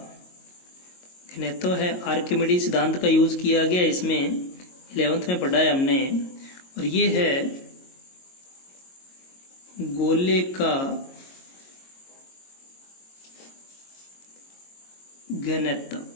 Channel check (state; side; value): late; right; 22 ms